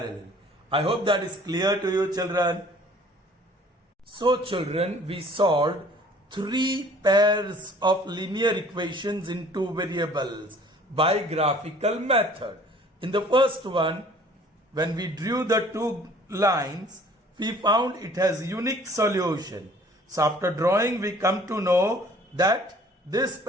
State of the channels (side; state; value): both; normal; correlation 0.53